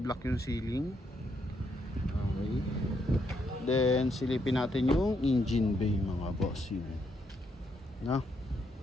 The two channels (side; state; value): both; normal; correlation 0.76